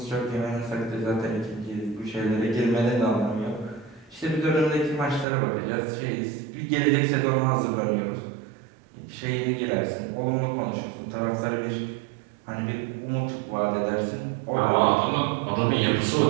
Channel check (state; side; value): drops out; left; at 5.2 s